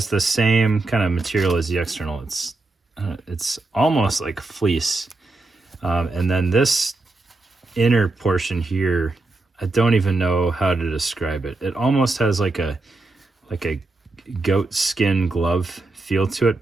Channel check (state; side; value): quieter; left; 3.2 dB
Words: the same kind of material as the external. It's almost like fleece. And then this inner portion here, I don't even know how to describe it. It almost has like a goat skin glove feel to it,